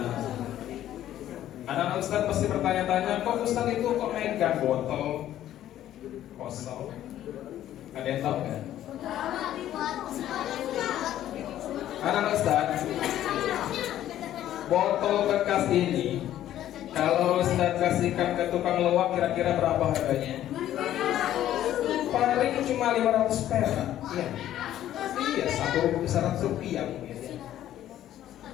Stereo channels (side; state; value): right; quieter; 12.3 dB